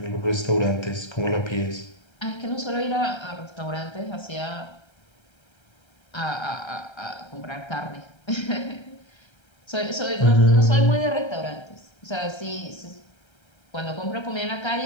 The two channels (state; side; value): late; right; 1.3 ms